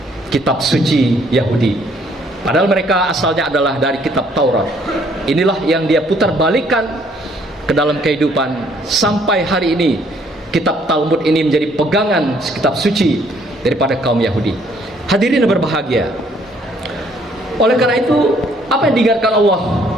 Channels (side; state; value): both; normal; correlation 0.64